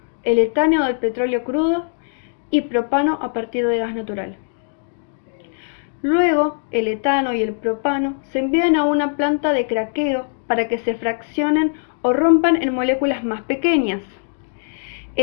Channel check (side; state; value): right; silent; digital silence